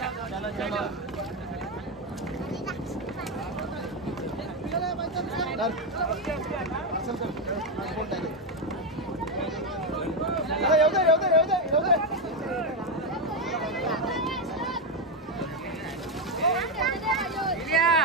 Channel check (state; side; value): normal; both; correlation 0.07